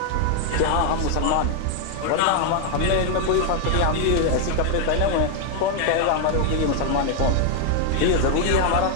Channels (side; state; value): both; different; correlation 0.00